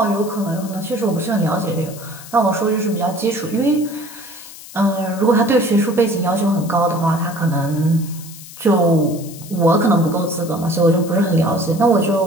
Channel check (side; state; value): left; noise; hiss, 16 dB below the sound